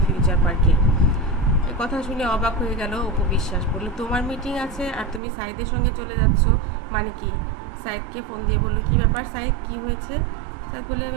ফিউচার পার্কে। এই কথা শুনে অবাক হয়ে গেল অপু বিশ্বাস, বলল তোমার মিটিং আছে আর তুমি সাইদের সঙ্গে চলে যাচ্ছ, মানে কি? সাইদকে ফোন দিয়ে বলল, কি ব্যাপার সাইদ, কি হয়েছে? সাইদ বলে,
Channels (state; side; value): drops out; left; at 5.2 s